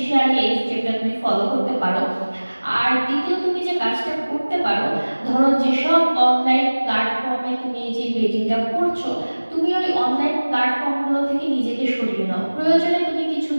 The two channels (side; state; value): both; inverted; correlation -1.00